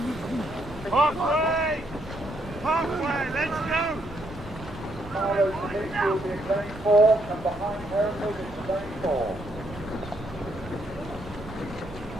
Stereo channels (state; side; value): noise; right; hum, 20 dB below the sound